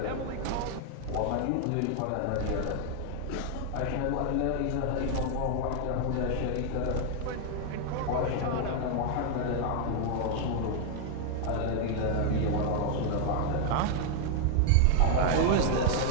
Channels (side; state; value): both; different; correlation 0.00